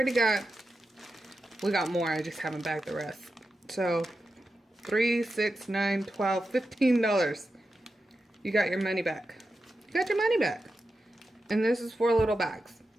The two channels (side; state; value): both; normal; correlation 0.90